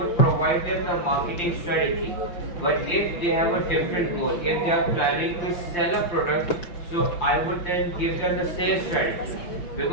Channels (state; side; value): late; right; 5.7 ms